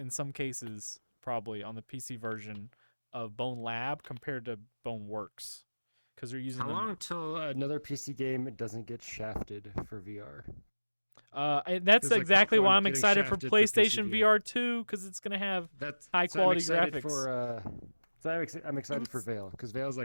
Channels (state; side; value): inverted; both; correlation -1.00